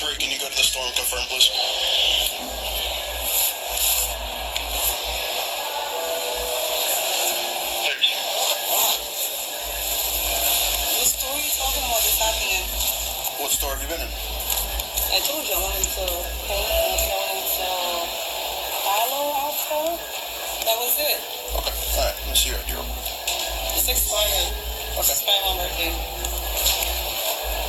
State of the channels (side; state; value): both; identical; correlation 1.00